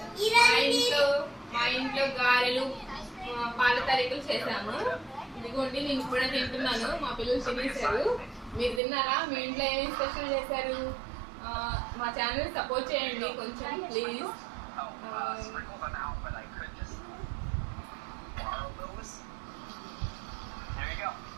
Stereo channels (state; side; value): drops out; left; at 8.8 s